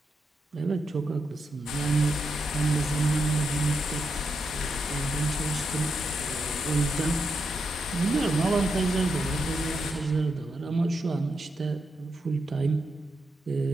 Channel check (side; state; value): both; normal; correlation 0.83